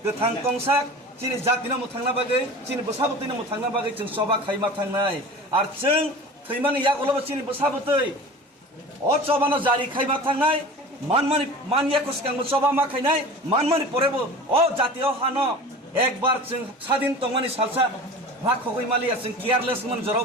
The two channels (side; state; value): both; normal; correlation 0.37